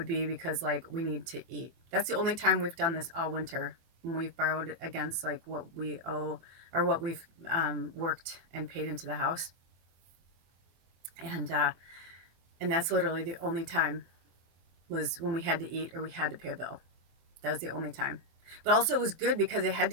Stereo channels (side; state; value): left; late; 24 ms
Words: be because like we need to eat. That's the only time we've done this all winter, when we've borrowed against like what we owe or what we've worked and paid into the house. And that's literally the only time, was when we had to eat or we had to pay a bill. That was the only time. But also it was good because it had